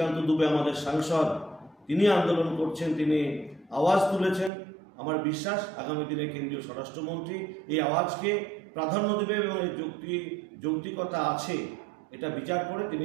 দুবে আমাদের সাংসদ, তিনি আন্দোলন করছেন, তিনি আওয়াজ তুলেছেন। আমার বিশ্বাস আগামী দিনে কেন্দ্রীয় স্বরাষ্ট্রমন্ত্রী এই আওয়াজকে প্রাধান্য দেবে এবং এই যৌক্তিকতা আছে এটা বিচার করে তিনি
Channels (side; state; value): left; drops out; at 4.5 s